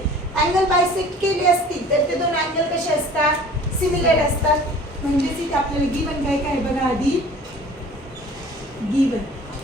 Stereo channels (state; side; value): normal; both; correlation 0.46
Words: अँगल बायसेक्ट केले असतील तर ते दोन अँगल कसे असतात, सिमिलर असतात. म्हणजेच इथे आपल्याला गिवन काय काय बघा आधी. Given